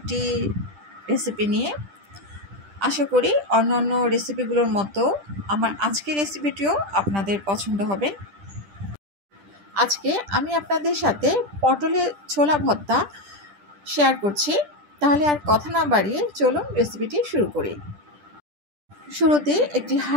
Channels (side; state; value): left; late; 10 ms